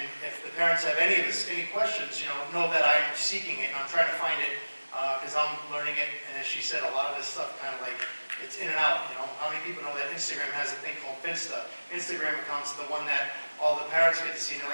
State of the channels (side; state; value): both; inverted; correlation -1.00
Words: if the parents have any questions, you know that I'm seeking it and I'm trying to find it because I'm learning it. And as she said, a lot of this stuff kind of like, it's in and out, you know. How many people know that Instagram has a thing called Finsta? Instagram account's the one that all the parents get to see. And